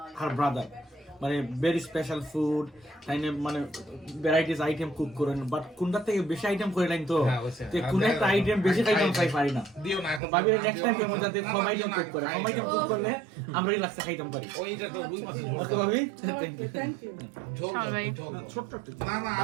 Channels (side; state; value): left; drops out; at 10.2 s